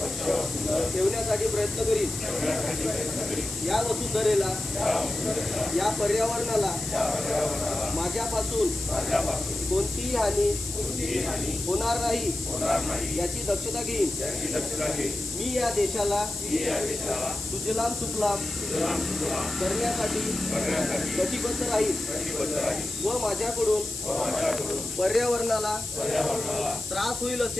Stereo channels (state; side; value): noise; left; hiss, 8 dB below the sound